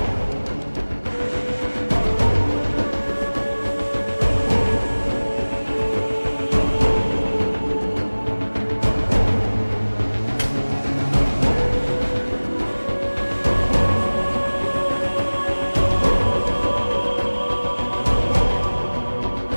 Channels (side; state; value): both; inverted; correlation -1.00